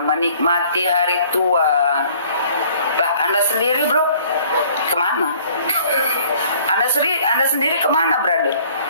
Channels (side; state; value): both; inverted; correlation -0.56